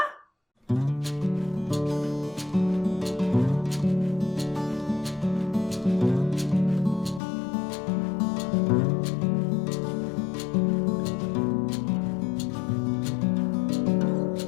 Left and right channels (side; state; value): right; drops out; at 7.2 s